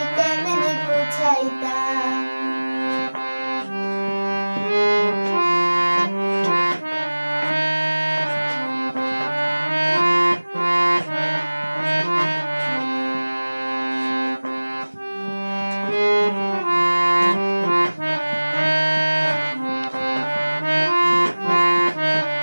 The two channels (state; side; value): inverted; both; correlation -1.00